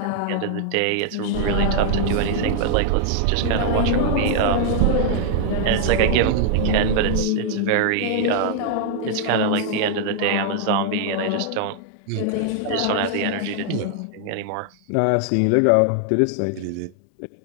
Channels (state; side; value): different; both; correlation 0.00